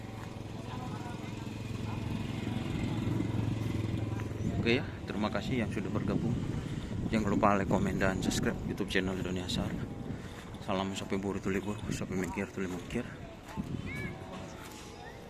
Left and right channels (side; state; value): both; identical; correlation 1.00